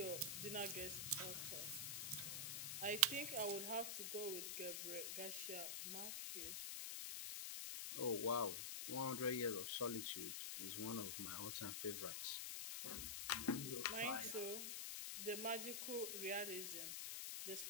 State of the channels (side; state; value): left; noise; hiss, 1 dB below the sound